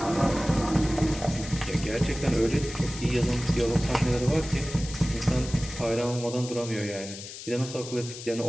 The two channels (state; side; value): noise; left; hiss, 12 dB below the sound